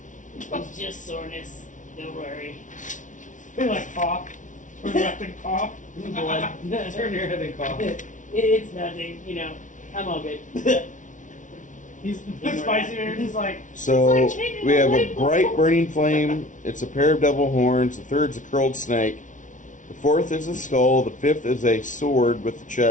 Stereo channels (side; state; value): right; late; 0.37 ms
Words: It's just soreness. Don't worry. They like cough. Turn left and cough. Blood. Turn your head and cough. It's nothing, you know. I'm all good. He's Ignore spicy that. man. He's like, So It's like changing we the have a light bulb. bright burning flame. It's a pair of devil horns. The third's a curled snake. The fourth is a skull. The fifth is a sword with the